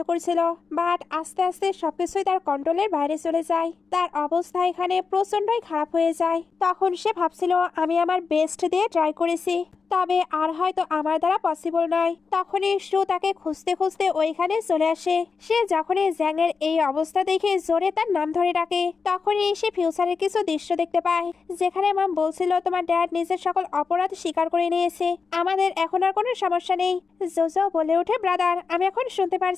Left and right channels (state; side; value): quieter; right; 5.1 dB